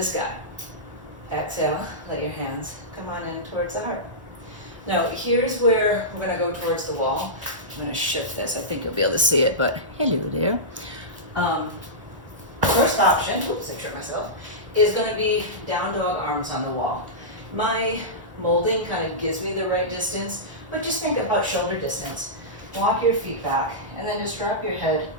sky. Exhale, let your hands come on in towards the heart. Now, here's where we're going to go towards the wall. I'm going to shift this. I think you'll be able to see it, but hello there. First option, oops, I tripped myself, is going to be down dog, arms on the wall. My molding kind of gives me the right distance, but just think about shoulder distance. Walk your feet back, and then just drop your head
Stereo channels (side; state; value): left; late; 1.1 ms